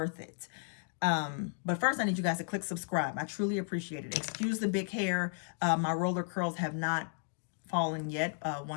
it? But first, I need you guys to click subscribe. I truly appreciate it. Excuse the big hair. My roller curls have not fallen yet.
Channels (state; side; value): silent; right; 55 dB below the other